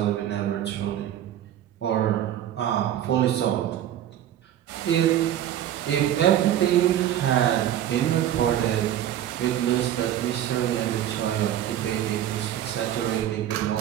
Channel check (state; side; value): quieter; left; 11.4 dB